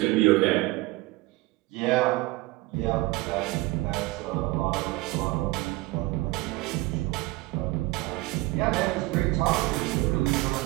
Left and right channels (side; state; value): left; quieter; 20.8 dB